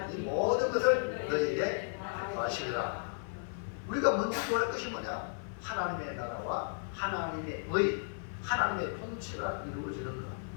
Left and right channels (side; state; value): right; silent; 55 dB below the other